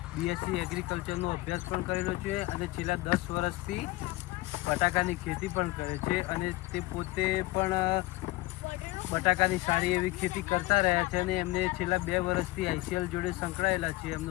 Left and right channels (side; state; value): right; quieter; 20.2 dB